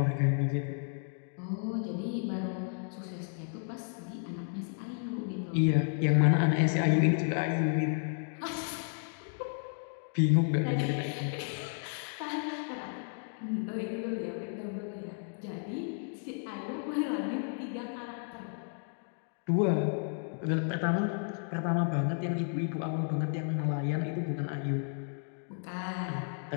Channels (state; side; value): silent; right; 56 dB below the other